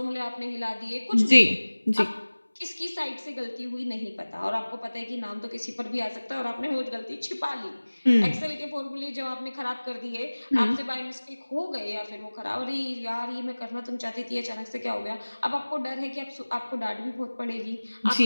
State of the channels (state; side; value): inverted; both; correlation -1.00